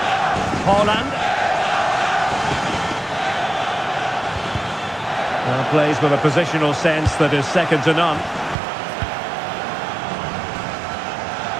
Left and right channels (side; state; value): left; drops out; at 8.6 s